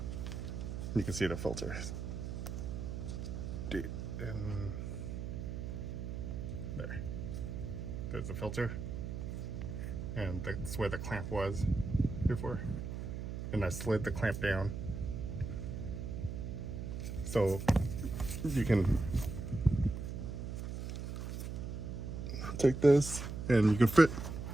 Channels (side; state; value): right; noise; hum, 5 dB below the sound